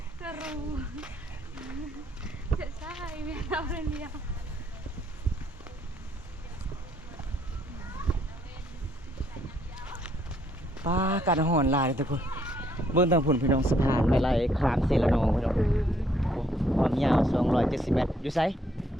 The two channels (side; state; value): both; normal; correlation 0.69